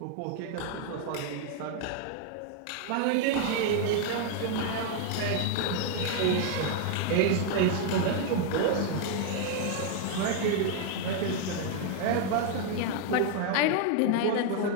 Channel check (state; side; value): different; both; correlation 0.00